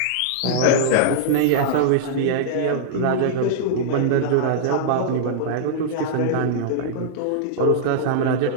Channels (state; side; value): different; both; correlation -0.02